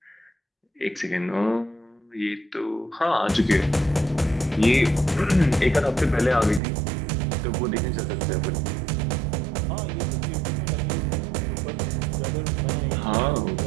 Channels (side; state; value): left; drops out; at 6.6 s